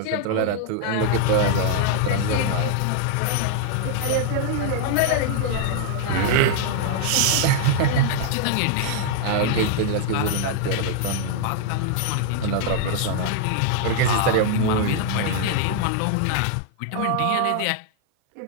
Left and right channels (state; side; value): different; both; correlation 0.00